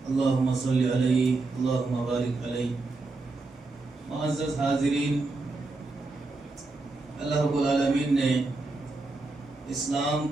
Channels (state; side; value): quieter; left; 3.4 dB